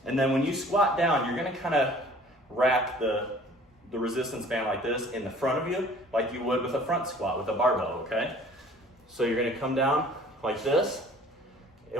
and then when you squat down, you're gonna kind of wrap the resistance band like this in the front of you, like you would with a front squat with a barbell, okay? So you're gonna come down like this,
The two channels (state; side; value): normal; both; correlation 0.51